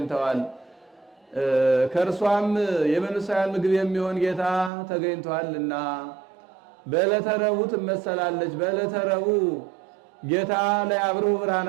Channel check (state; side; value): drops out; left; at 4.7 s